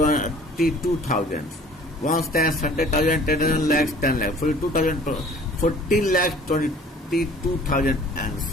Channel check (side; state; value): both; normal; correlation 0.50